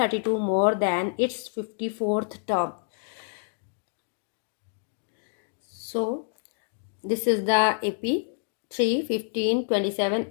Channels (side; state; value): right; silent; digital silence